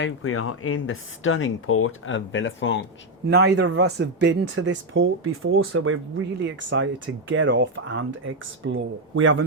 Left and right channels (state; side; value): normal; both; correlation 0.05